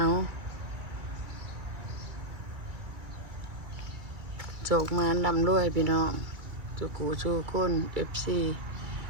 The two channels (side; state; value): left; late; 2.3 ms